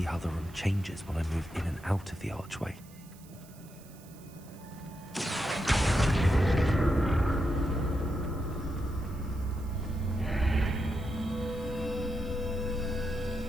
how the room changes when I move in and out of the archway.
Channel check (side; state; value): right; noise; hiss, 23 dB below the sound